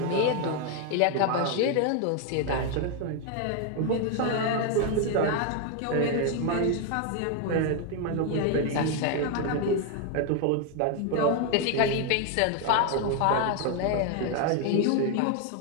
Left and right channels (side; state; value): both; different; correlation 0.01